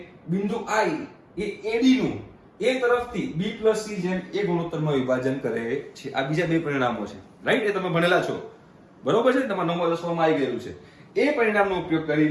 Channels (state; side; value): identical; both; correlation 1.00